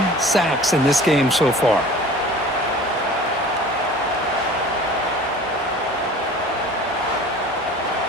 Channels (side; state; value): both; normal; correlation 0.43